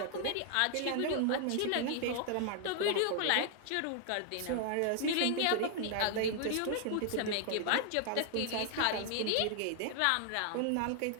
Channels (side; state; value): both; different; correlation 0.00